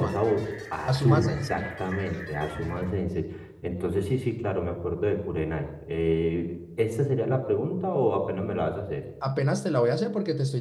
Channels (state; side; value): identical; both; correlation 1.00